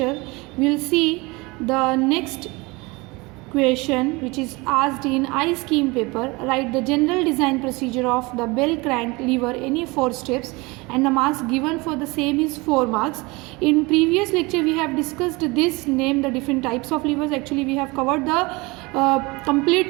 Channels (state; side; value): quieter; left; 24.8 dB